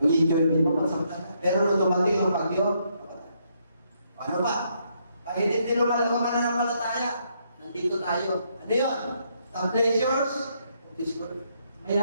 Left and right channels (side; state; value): both; inverted; correlation -0.74